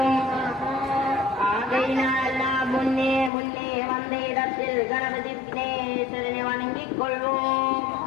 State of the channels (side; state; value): right; drops out; at 3.3 s